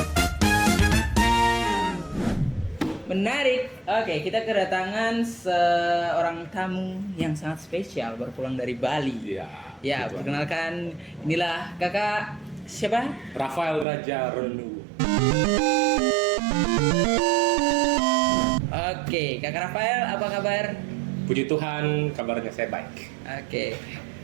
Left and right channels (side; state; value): left; drops out; at 13.9 s